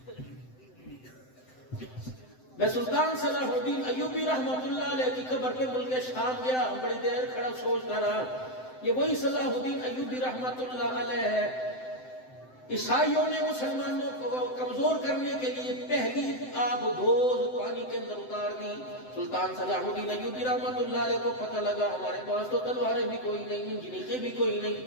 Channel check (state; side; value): late; right; 7.8 ms